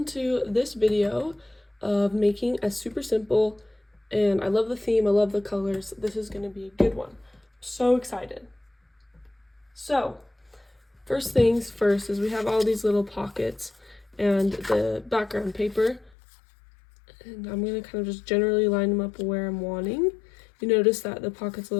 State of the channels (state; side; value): drops out; right; at 16.1 s